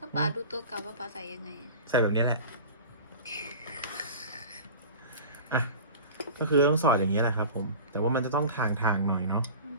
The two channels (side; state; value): both; inverted; correlation -0.37